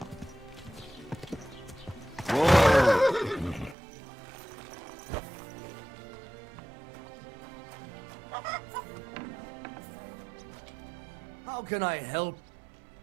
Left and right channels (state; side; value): drops out; left; at 3.8 s